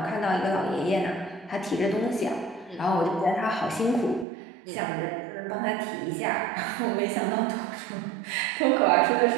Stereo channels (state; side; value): drops out; left; at 4.2 s